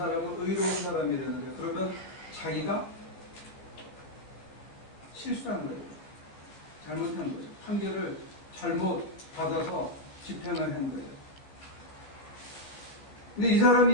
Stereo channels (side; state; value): right; late; 14 ms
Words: 의로운 사람이라는데, 그러면 자기가 실수한 거예요. 잘못한 거죠. 판결을 잘못 받아서 집행을 한 거예요. 근데 이 사람